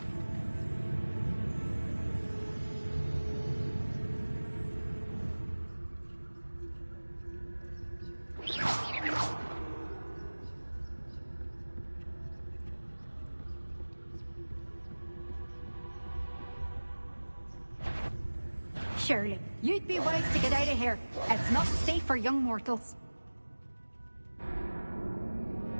Surely, you'd be wise to get out of here. It's not safe for young mortals.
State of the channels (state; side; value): inverted; both; correlation -1.00